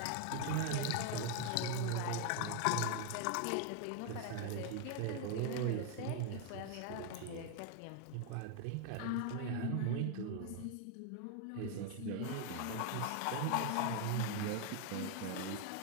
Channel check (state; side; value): different; both; correlation 0.01